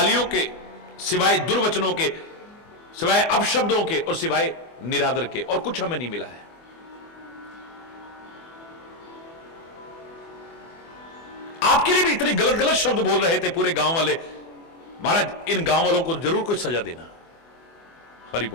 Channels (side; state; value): right; late; 24 ms